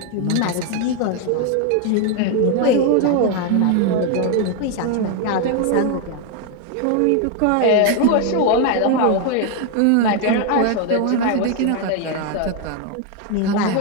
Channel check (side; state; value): both; different; correlation 0.01